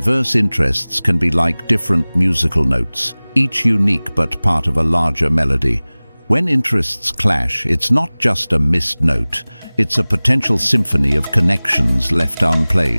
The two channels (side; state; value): both; inverted; correlation -1.00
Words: interests can be like different musical notes, each unique but part of a larger melody. When interests clash, it's not just a missed note, it's a potential symphony of connections left